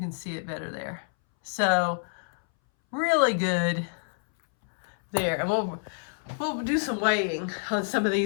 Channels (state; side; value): silent; right; 60 dB below the other